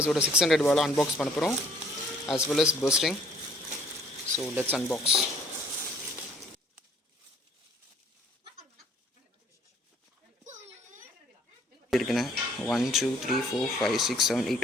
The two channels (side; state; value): both; normal; correlation 0.59